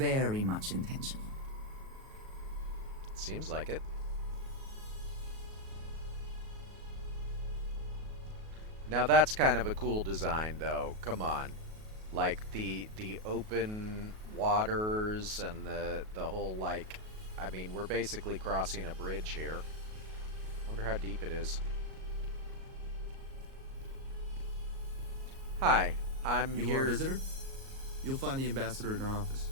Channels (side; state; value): left; late; 37 ms